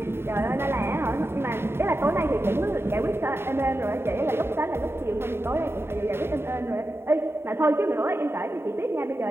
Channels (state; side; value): late; left; 0.11 ms